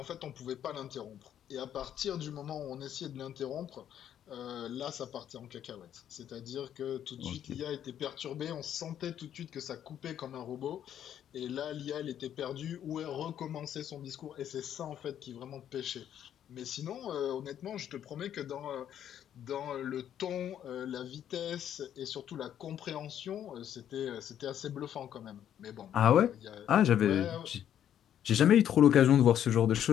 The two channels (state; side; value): quieter; right; 10.1 dB